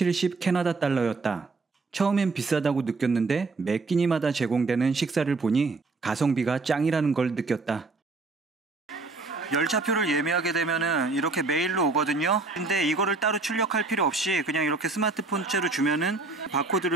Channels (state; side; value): quieter; left; 3.8 dB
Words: 캐나다 달러였다. 처음엔 비싸다고 느꼈는데 매 끼니마다 제공되는 식사를 보니 가성비가 짱이라는 걸 느꼈다. 열차표를 예매하게 되면은 이렇게 메일로 오거든요. 근데 이거를 따로 출력할 필요 없이 그냥 이렇게 스마트폰째로 주면은